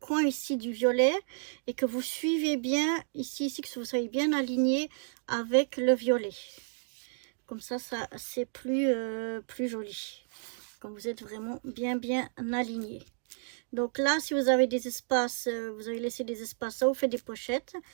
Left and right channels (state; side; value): silent; left; digital silence